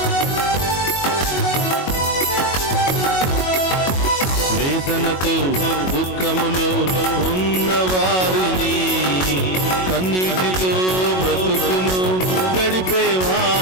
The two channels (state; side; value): late; right; 22 ms